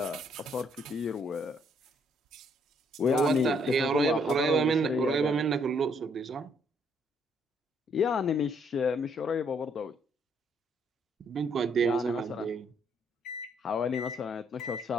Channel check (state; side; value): normal; both; correlation 0.68